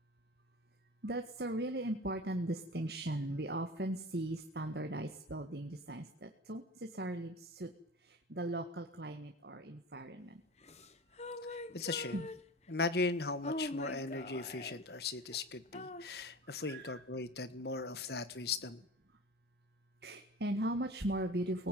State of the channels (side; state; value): both; normal; correlation 0.35